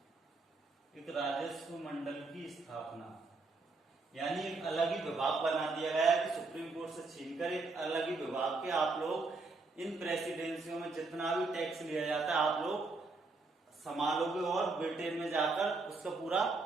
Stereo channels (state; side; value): quieter; left; 3.7 dB